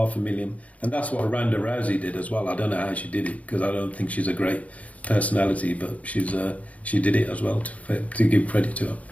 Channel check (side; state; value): right; late; 0.068 ms